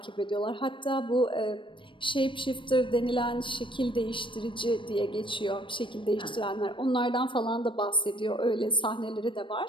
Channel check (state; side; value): late; right; 0.24 ms